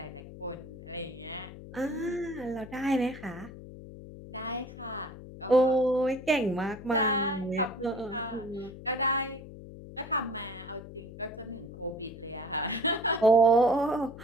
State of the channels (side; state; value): left; noise; hum, 14 dB below the sound